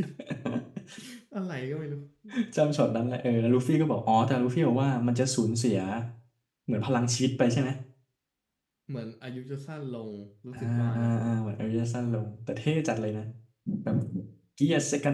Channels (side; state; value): both; identical; correlation 1.00